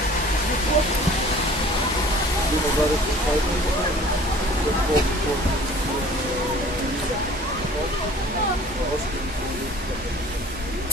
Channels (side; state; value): both; normal; correlation 0.48